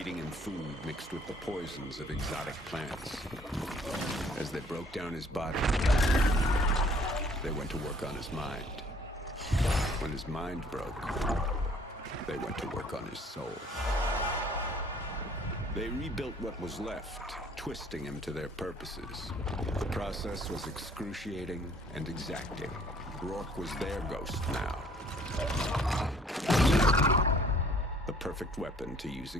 him food mixed with the poisons of exotic plants. As they broke down his body, they went to work on his mind. When his mind broke, they went to work on his soul. They rebuilt what was left, twisting him to their purposes. The process was excruciating and exacting. Rourke was their ghost now. The perfect weapon to use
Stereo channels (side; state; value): both; normal; correlation 0.58